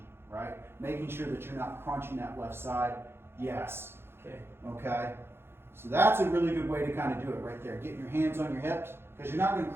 right? Making sure that you're not crunching that left side. Yes. Okay. Okay? So that's a really good way to kind of do it right there. Getting your hands on your hips, because you're not going to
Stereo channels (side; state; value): left; late; 0.11 ms